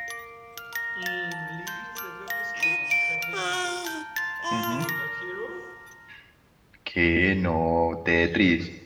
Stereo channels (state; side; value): identical; both; correlation 1.00